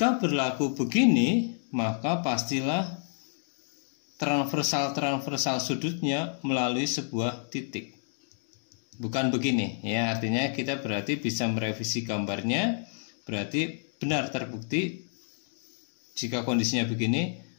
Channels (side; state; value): right; silent; digital silence